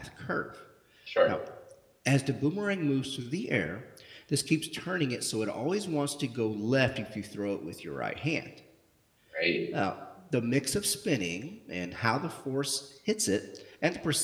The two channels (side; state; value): both; identical; correlation 1.00